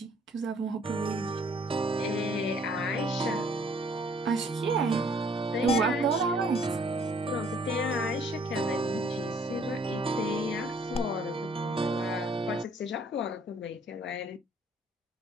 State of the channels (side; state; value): both; normal; correlation 0.60